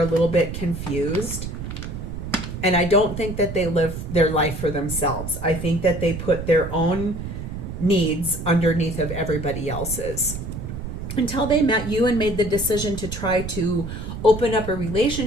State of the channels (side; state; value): right; noise; rumble, 7 dB below the sound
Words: a little bit confused. And I don't think that they live their life for themselves. I think that they put their own needs underneath of everybody else's. Until they met you and made the decision to try to open up a